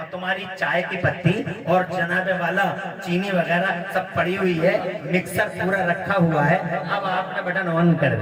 تمہاری چائے کی پتی اور جناب والا چینی وغیرہ سب پڑی ہوئی ہے، مکسر پورا رکھا ہوا ہے. اب آپ نے بٹن آن کر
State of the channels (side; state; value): both; identical; correlation 1.00